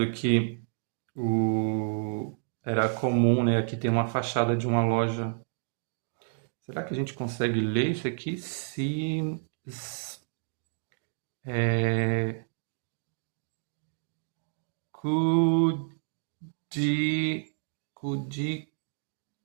que era comum, né? Aqui tem uma fachada de uma loja. Será que a gente consegue ler isso aqui?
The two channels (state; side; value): silent; left; digital silence